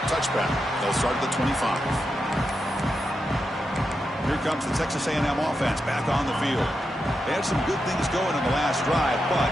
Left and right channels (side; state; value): both; normal; correlation 0.87